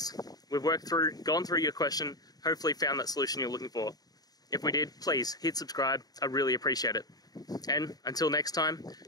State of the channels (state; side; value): late; right; 0.19 ms